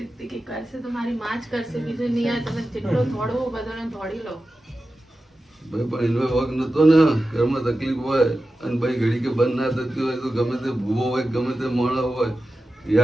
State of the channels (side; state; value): both; normal; correlation 0.93